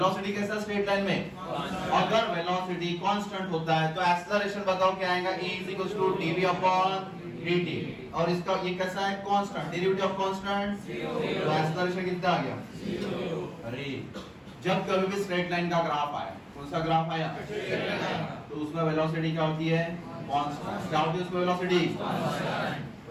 कैसा है स्ट्रेट लाइन में? अगर वेलोसिटी कांस्टेंट होता है तो एक्सेलरेशन बताओ क्या आएगा? e dv upon dt। और इसका ये कैसा है? कांस्टेंट। डेरिवेटिव ऑफ कांस्टेंट तो एक्सेलरेशन कितना आ गया? 0। अरे जब कभी भी स्ट्रेट लाइन का ग्राफ आया, कौन सा ग्राफ आया? तो उसमें वेलोसिटी क्या होती है? कांस्टेंट। क्या होती है उसमें वेलोसिटी?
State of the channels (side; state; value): both; identical; correlation 1.00